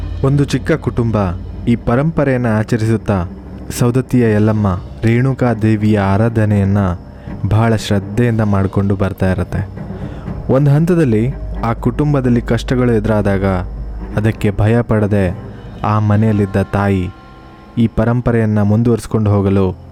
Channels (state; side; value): identical; both; correlation 1.00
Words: ಒಂದು ಚಿಕ್ಕ ಕುಟುಂಬ ಈ ಪರಂಪರೆಯನ್ನು ಆಚರಿಸುತ್ತಾ ಸೌದತ್ತಿಯ ಯಲ್ಲಮ್ಮ ರೇಣುಕಾದೇವಿಯ ಆರಾಧನೆಯನ್ನು ಬಹಳ ಶ್ರದ್ಧೆಯಿಂದ ಮಾಡಿಕೊಂಡು ಬರ್ತಾ ಇರುತ್ತೆ. ಒಂದು ಹಂತದಲ್ಲಿ ಆ ಕುಟುಂಬದಲ್ಲಿ ಕಷ್ಟಗಳು ಎದುರಾದಾಗ ಅದಕ್ಕೆ ಭಯ ಪಡದೆ ಆ ಮನೆಯಲ್ಲಿದ್ದ ತಾಯಿ ಈ ಪರಂಪರೆಯನ್ನು ಮುಂದುವರಿಸ್ಕೊಂಡು ಹೋಗಲು